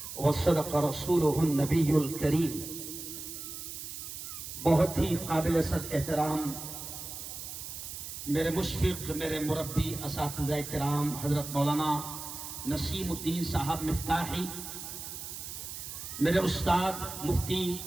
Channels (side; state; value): right; noise; hiss, 9 dB below the sound